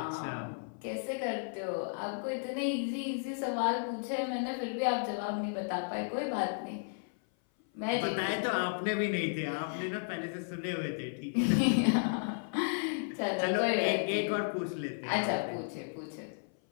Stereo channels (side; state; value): right; silent; 55 dB below the other